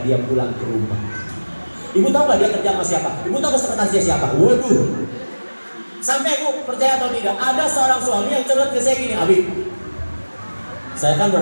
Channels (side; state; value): both; inverted; correlation -1.00